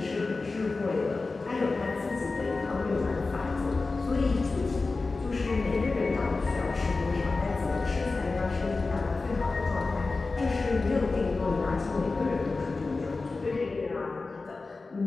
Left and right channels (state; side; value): quieter; right; 3.7 dB